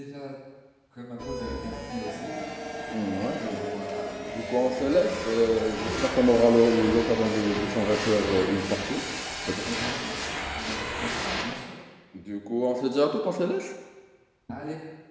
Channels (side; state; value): both; identical; correlation 1.00